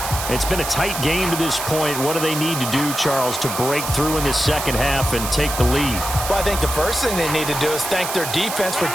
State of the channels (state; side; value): noise; right; hiss, 5 dB below the sound